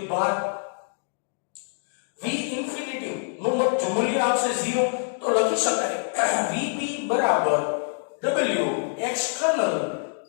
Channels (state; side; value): silent; right; 61 dB below the other